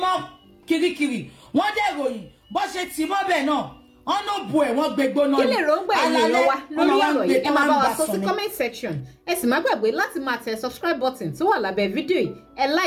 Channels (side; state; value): both; identical; correlation 1.00